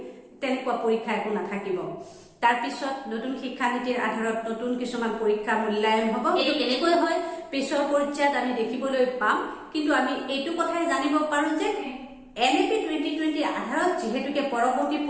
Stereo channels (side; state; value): both; identical; correlation 1.00